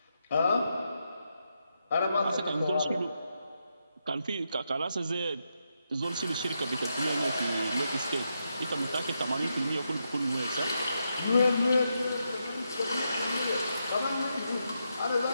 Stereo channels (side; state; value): both; inverted; correlation -0.83